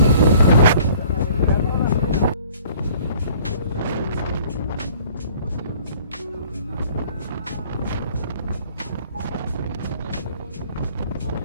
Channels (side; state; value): both; inverted; correlation -0.53